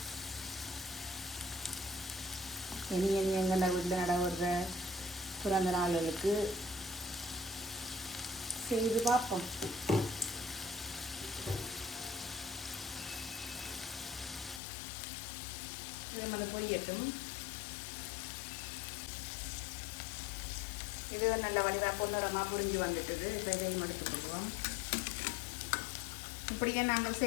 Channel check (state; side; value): drops out; right; at 14.6 s